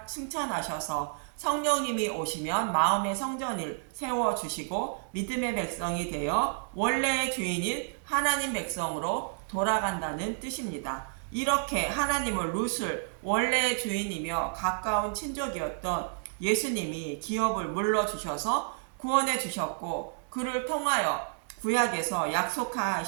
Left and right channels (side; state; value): left; silent; 58 dB below the other